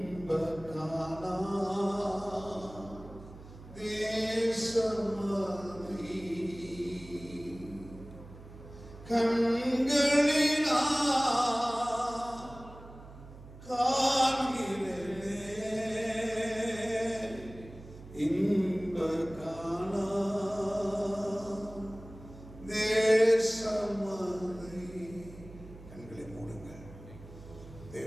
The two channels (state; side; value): noise; right; hum, 17 dB below the sound